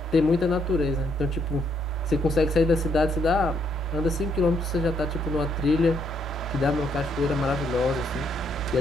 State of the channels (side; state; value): both; normal; correlation 0.72